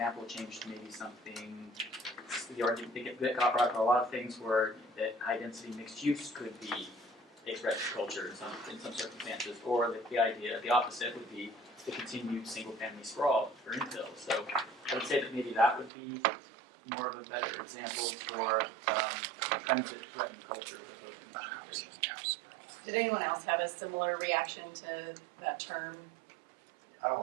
changed to maybe something. The argument they got brought up, a lot of things where that high density mixed use could be expressed culture in some circumstances, or the idea, the opposite would be the continued single family sprawl for infill. So I would say that maybe that would be more of a better example for trends that threaten culture as opposed to mansionization. Did anyone else have a similar reaction to that term? I don't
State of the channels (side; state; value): left; drops out; at 15.9 s